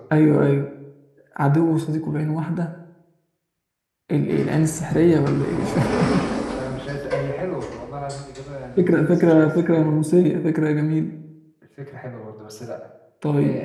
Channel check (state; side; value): identical; both; correlation 1.00